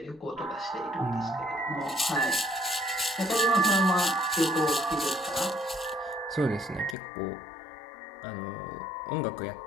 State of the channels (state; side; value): drops out; right; at 7.0 s